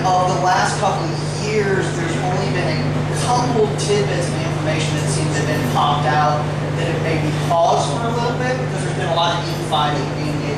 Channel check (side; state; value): both; identical; correlation 1.00